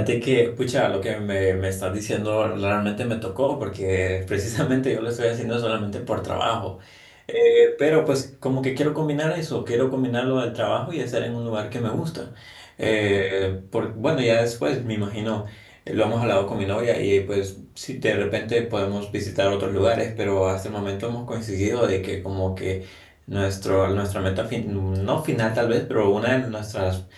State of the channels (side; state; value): both; identical; correlation 1.00